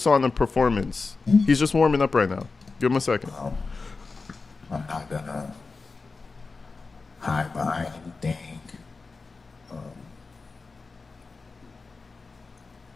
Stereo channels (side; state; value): right; quieter; 4.1 dB